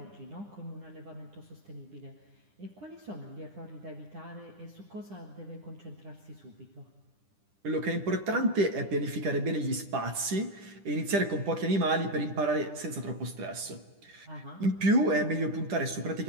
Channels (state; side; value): late; left; 10 ms